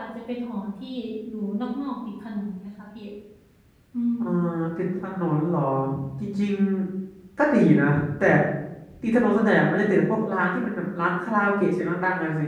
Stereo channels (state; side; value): identical; both; correlation 1.00